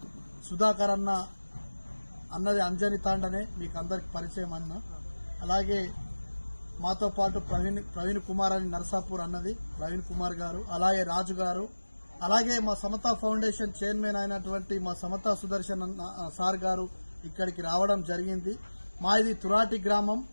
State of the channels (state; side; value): inverted; both; correlation -1.00